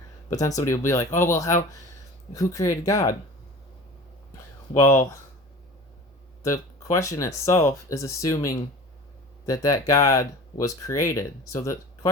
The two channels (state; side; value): normal; both; correlation 0.38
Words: But then somebody will be like, oh, well, who created God? Well, the question itself is assuming that God was created. So the